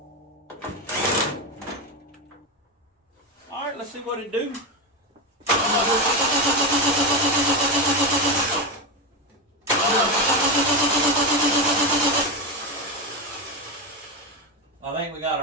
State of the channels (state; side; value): normal; both; correlation 0.13